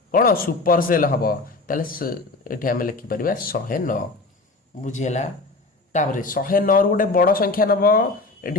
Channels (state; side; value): quieter; right; 3.4 dB